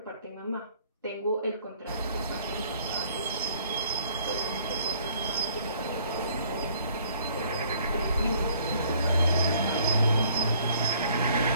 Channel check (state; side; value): inverted; both; correlation -0.60